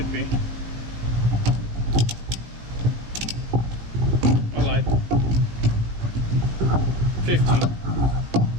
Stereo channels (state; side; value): late; left; 18 ms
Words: be. I lied. 15.